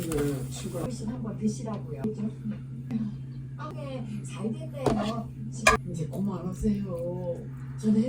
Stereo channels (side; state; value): both; identical; correlation 1.00